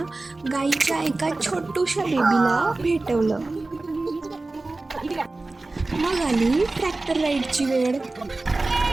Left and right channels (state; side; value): quieter; left; 3.2 dB